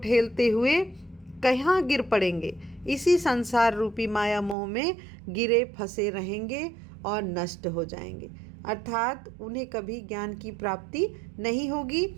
हुए कहाँ गिर पड़ेंगे, इसी संसार रूपी माया मोह में गिरे फंसे रहेंगे और नष्ट हो जाएंगे, अर्थात उन्हें कभी ज्ञान की प्राप्ति नहीं होगी।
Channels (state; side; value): drops out; left; at 4.5 s